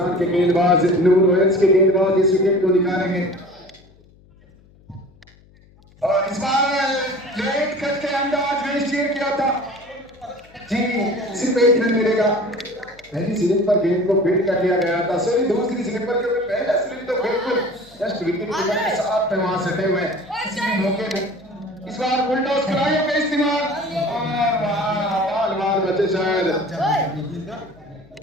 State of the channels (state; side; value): noise; left; hum, 28 dB below the sound